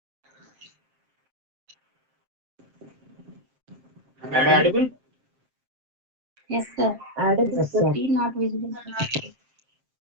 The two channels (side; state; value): left; late; 7.6 ms